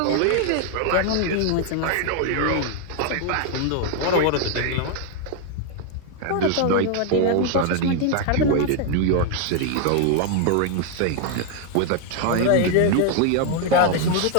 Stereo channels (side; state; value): both; different; correlation 0.00